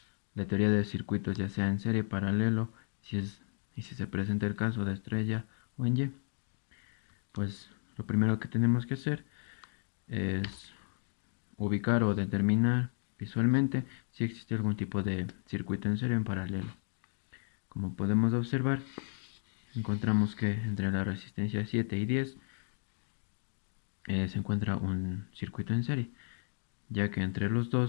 la teoría de circuitos, ya sea en serie, paralelo, y si se presenta el caso de estrella o en Y. Pues lo primero que tenemos que hacer es ubicar o determinar visualmente si existe algún tipo de circuito en serie o en paralelo. Como podemos observar, encontramos que entre la resistencia 7 y 10 se encuentra un circuito en serie, ya que entre los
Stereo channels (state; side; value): silent; right; digital silence